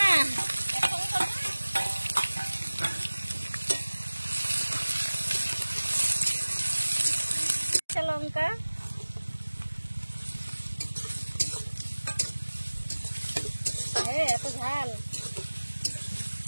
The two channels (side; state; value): both; inverted; correlation -1.00